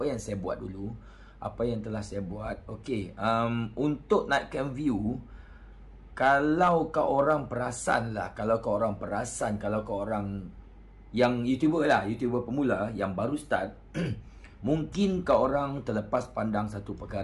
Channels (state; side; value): identical; both; correlation 1.00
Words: yang saya buat dulu, apa yang telah saya buat. Okey, untuk naikkan view, kalau kau orang perasan kalau kau orang yang YouTuber pemula yang baru start, mungkin kau orang terlepas pandang satu